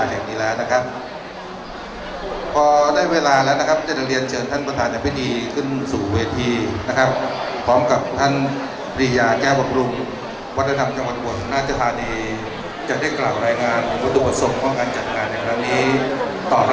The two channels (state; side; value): identical; both; correlation 1.00